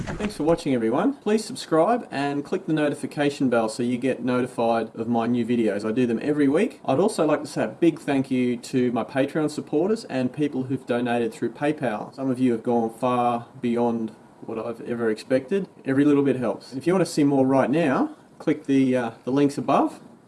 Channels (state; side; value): identical; both; correlation 1.00